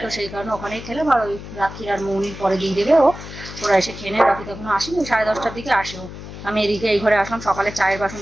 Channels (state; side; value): noise; left; hum, 12 dB below the sound